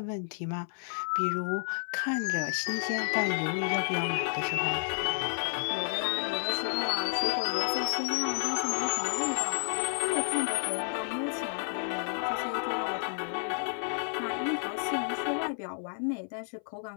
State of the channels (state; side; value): silent; right; 57 dB below the other